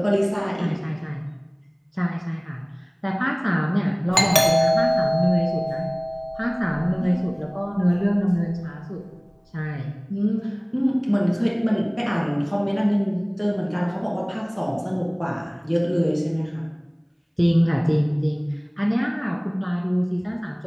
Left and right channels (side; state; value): both; identical; correlation 1.00